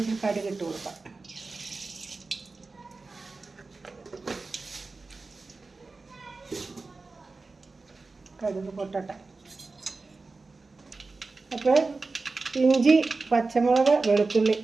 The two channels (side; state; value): left; quieter; 3.8 dB